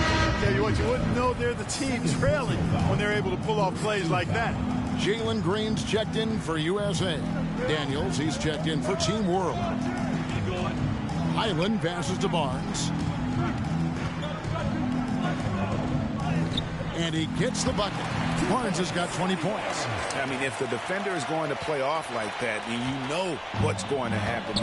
you what, you wouldn't know they're the team trailing when they're able to pull off plays like that. Jalen Green's checked in for USA. Daniels, he's checked in for Team World. Highland passes to Barnes. And he gets the bucket. Barnes has got 20 points. I mean, if the defender is going to play off like that, then you know what's going to happen.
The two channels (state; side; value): identical; both; correlation 1.00